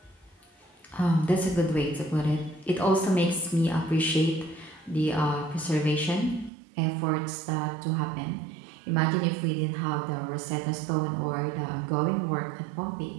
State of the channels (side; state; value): left; drops out; at 6.5 s